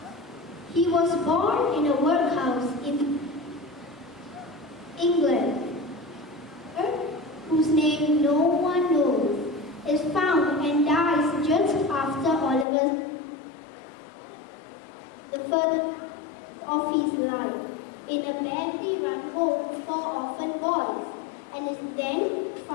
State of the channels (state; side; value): drops out; right; at 12.7 s